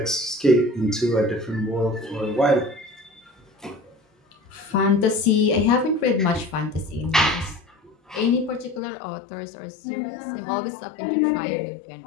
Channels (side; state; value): right; drops out; at 8.8 s